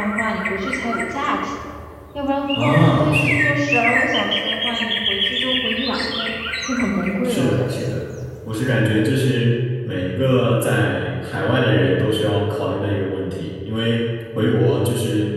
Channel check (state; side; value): identical; both; correlation 1.00